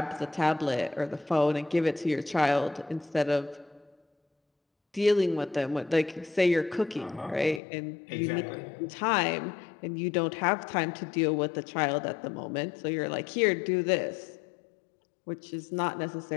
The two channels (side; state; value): right; drops out; at 7.6 s